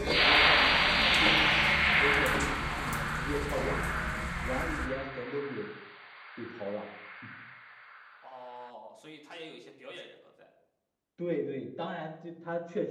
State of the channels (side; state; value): both; identical; correlation 1.00